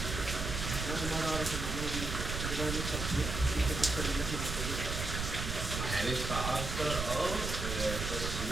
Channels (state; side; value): noise; right; rumble, 3 dB below the sound